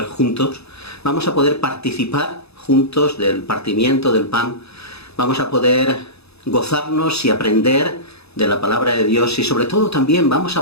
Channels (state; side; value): late; right; 0.79 ms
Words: juntos. Vamos a poder participar juntos del partimiento del pan. Vamos a poder gozarnos y aprender de la palabra de Dios y sobre todo también vamos